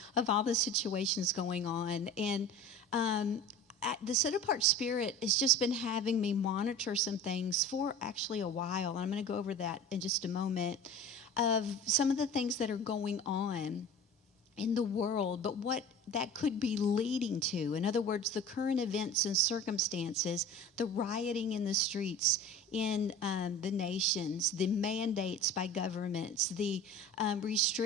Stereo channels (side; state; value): both; normal; correlation 0.38